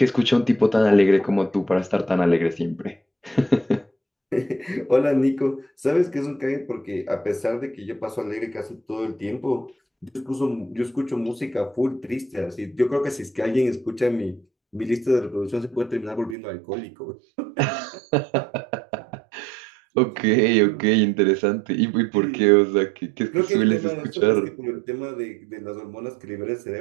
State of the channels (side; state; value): left; drops out; at 16.4 s